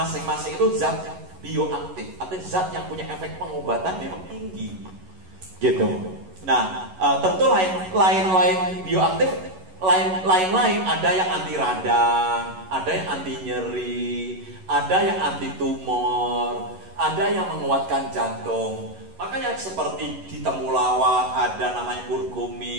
itu zat bioaktif, atau zat yang punya efek pengobatan memang tinggi, gitu. Nah, tentu lain-lain bioaktif, lain-lain ada yang anti radang, ada yang anti nyeri, ada yang anti tumor, ada yang menguatkan jantung. Makanya seperti di temulawak ada namanya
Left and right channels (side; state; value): left; late; 11 ms